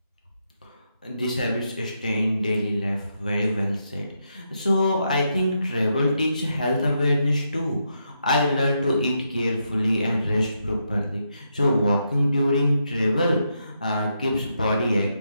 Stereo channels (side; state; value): both; inverted; correlation -0.81